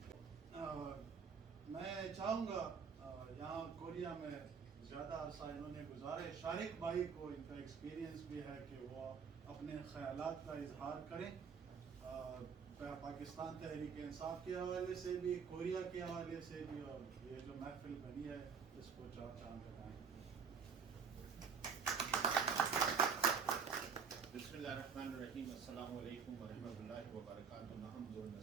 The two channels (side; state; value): left; quieter; 6.2 dB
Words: میں چاہوں گا یہاں کوریا میں زیادہ عرصہ انہوں نے گزارے. شارق بھائی کو ان کا ایکسپیرینس بھی ہے کہ وہ اپنے خیالات کا اظہار کریں پاکستان تحریک انصاف کے حوالے سے بھی کوریا کے حوالے سے بھی اور یہ جو محفل بنی ہے اس کو چار چاند لگائیں. بسم اللہ الرحمن الرحیم. السلام علیکم ورحمۃ اللہ وبرکاتہ. نحمد و